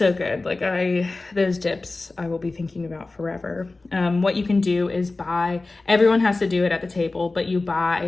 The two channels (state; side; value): quieter; right; 3.3 dB